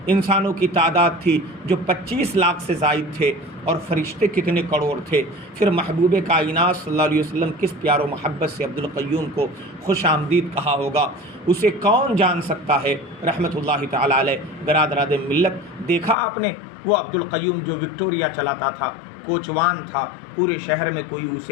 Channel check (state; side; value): drops out; right; at 16.2 s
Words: انسانوں کی تعداد تھی جو 25 لاکھ سے زائد تھے، اور فرشتے کتنے کروڑ تھے۔ پھر محبوب کائنات صلی اللہ علیہ وسلم کس پیار و محبت سے عبدالقیوم کو خوش آمدید کہا ہوگا، اسے کون جان سکتا ہے رحمۃ اللہ تعالی علیہ۔ برادران ملت، دیکھا آپ نے وہ عبدالقیوم جو وکٹوریا چلاتا تھا، کوچوان تھا، پورے شہر میں کوئی